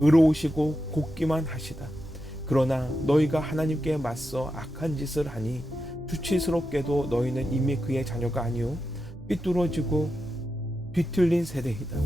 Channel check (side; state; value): right; noise; hum, 18 dB below the sound